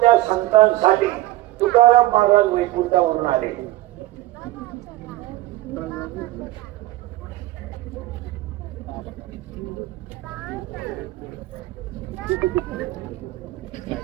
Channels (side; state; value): left; quieter; 17.1 dB